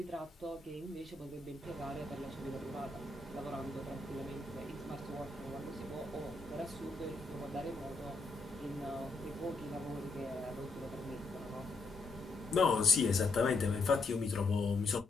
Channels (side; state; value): right; quieter; 3.4 dB